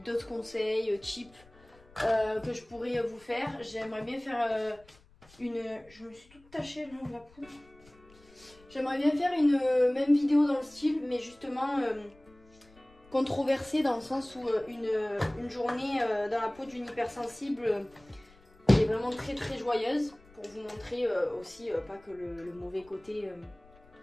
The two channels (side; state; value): left; noise; rumble, 27 dB below the sound